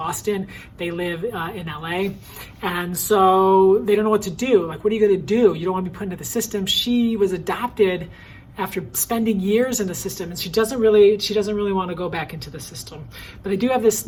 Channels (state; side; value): identical; both; correlation 1.00